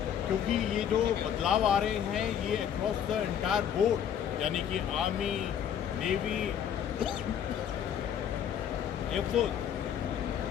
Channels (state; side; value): quieter; right; 9.0 dB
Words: क्योंकि ये जो बदलाव आ रहे हैं ये अक्रॉस द एंटायर बोर्ड, यानी कि आर्मी, नेवी, एयरफोर्स,